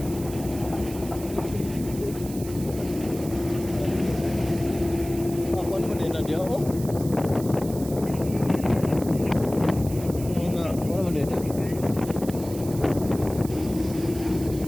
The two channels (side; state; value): right; noise; hiss, 15 dB below the sound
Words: Ako ano din na dia oh. Nga, ano man din.